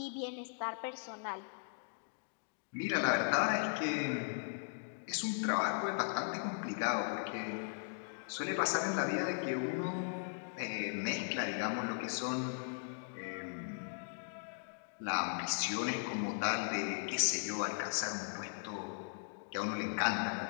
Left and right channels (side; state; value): right; silent; digital silence